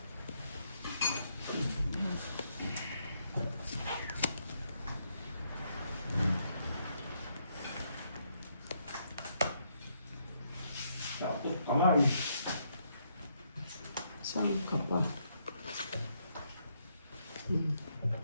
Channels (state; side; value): inverted; both; correlation -0.75